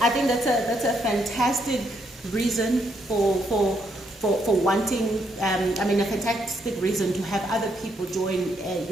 I think that's a fantastic reason for wanting, a fantastic reason to have other people join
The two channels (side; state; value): both; normal; correlation 0.75